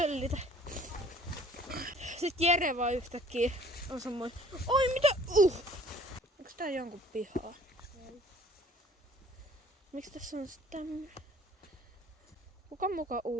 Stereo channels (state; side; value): normal; both; correlation 0.53